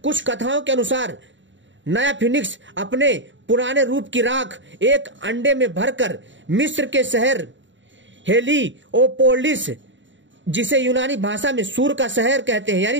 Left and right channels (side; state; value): left; late; 0.54 ms